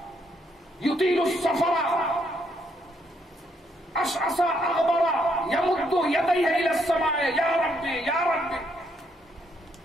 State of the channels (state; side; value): normal; both; correlation 0.74